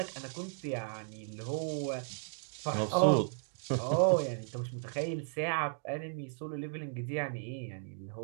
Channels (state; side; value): silent; left; digital silence